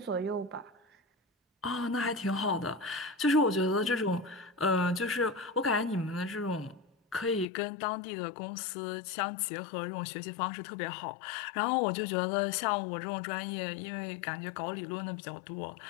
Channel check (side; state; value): right; drops out; at 7.5 s